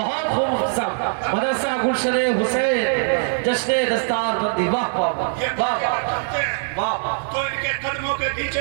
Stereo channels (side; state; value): left; silent; 64 dB below the other